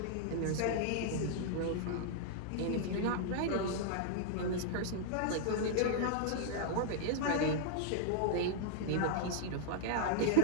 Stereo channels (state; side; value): different; both; correlation -0.01